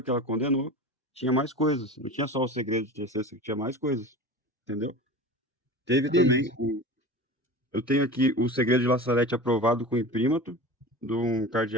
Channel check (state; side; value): normal; both; correlation 0.33